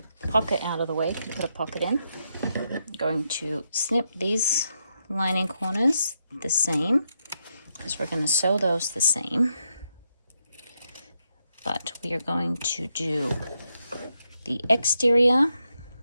pocket out of the way if you put a pocket in. I'm going to snip these lining corners the same, because we're going to sew those the same. But we are going to do the exterior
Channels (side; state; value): both; inverted; correlation -0.81